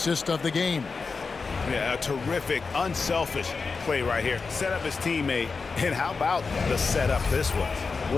of the game. Yeah, a terrific, unselfish play right here. Set up his teammate, and how about the setup this was?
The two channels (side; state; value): right; quieter; 4.6 dB